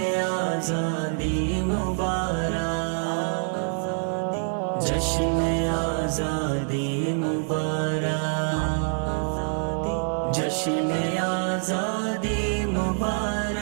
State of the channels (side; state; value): left; silent; digital silence